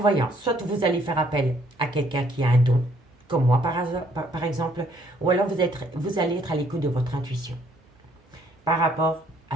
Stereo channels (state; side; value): normal; both; correlation 0.66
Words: soit vous allez faire appel à quelqu'un qui a un don, comme moi par exemple, ou alors vous allez être à l'écoute de votre intuition par rapport